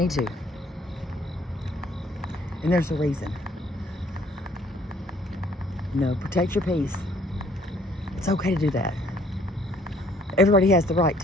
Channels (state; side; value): normal; both; correlation 0.61